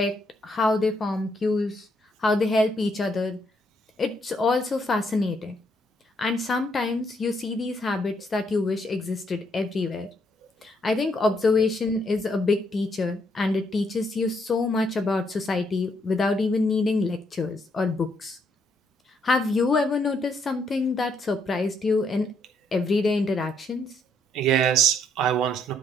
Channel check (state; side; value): normal; both; correlation 0.73